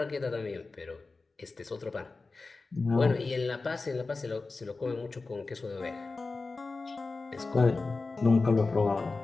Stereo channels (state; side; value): quieter; right; 3.8 dB